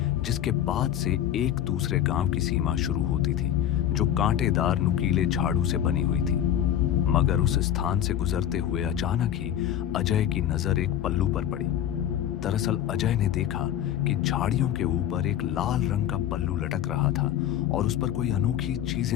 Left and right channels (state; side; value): quieter; right; 10.7 dB